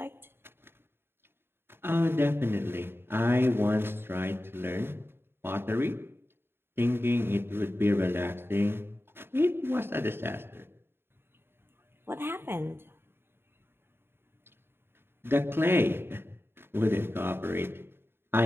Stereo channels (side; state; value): left; late; 0.11 ms